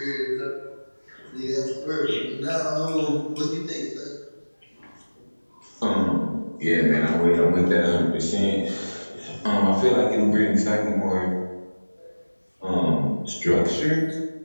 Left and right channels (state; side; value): inverted; both; correlation -1.00